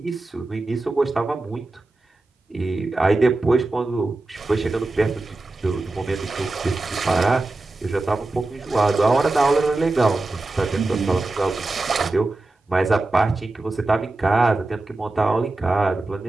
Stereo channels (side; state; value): left; quieter; 3.1 dB